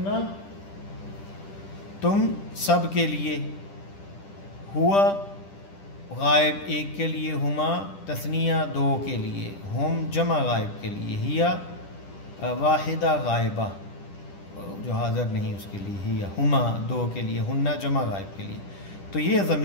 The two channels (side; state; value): right; late; 10 ms